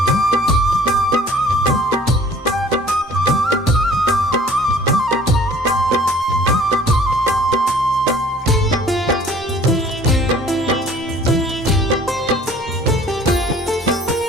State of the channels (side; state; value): both; normal; correlation 0.52